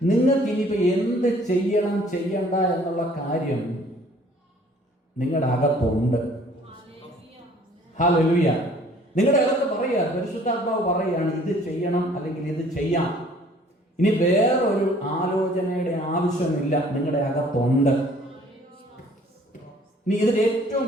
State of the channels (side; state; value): both; normal; correlation 0.55